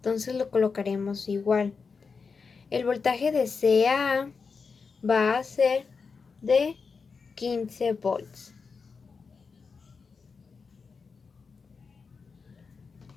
lo colocaremos igual. El voltaje de C a A va a ser de 15 volts.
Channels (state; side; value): quieter; right; 5.1 dB